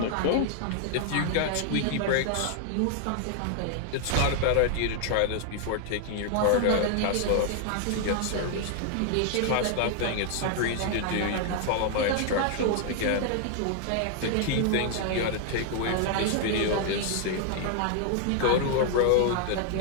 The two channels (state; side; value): different; both; correlation 0.00